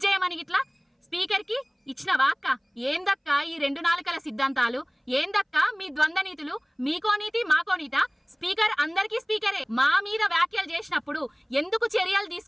చేయమని ఇట్లా స్పీకర్కి ఇచ్చినవా అక్క? ఏందక్క ఈ రెండు నాలుకల సిద్ధాంతాలు? ఏందక్క మీ ద్వంద్వ నీతులు? మీకో నీతి మాకో నీత? స్పీకర్ అందరికీ స్పీకరే. మా మీద వ్యాఖ్యలు చేసినప్పుడు ఎందుకు చర్యలు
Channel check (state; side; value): identical; both; correlation 1.00